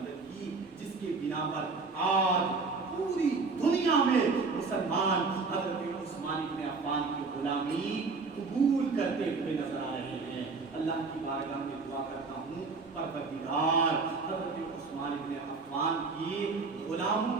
کی، جس کے بنا پر آج پوری دنیا میں مسلمان حضرت عثمان بن عفان کی غلامی قبول کرتے ہوئے نظر آ رہے ہیں۔ اللہ کی بارگاہ میں دعا کرتا ہوں پروردگار حضرت عثمان بن عفان کی غلاموں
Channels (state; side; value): quieter; left; 4.3 dB